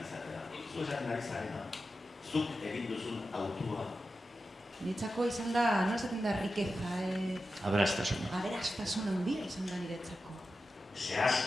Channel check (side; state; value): both; normal; correlation 0.91